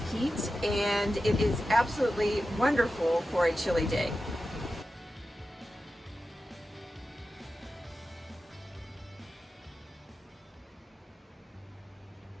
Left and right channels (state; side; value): normal; both; correlation 0.92